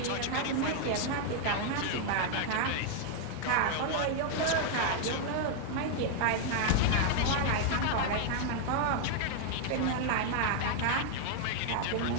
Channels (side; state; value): both; different; correlation 0.00